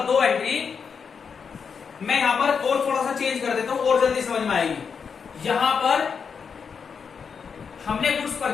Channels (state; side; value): quieter; right; 6.2 dB